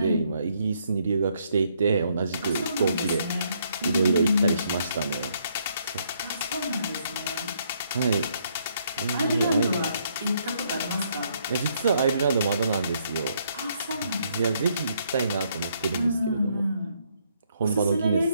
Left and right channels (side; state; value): both; inverted; correlation -0.71